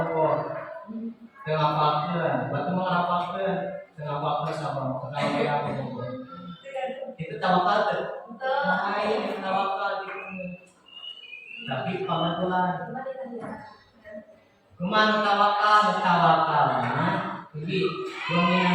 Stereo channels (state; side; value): identical; both; correlation 1.00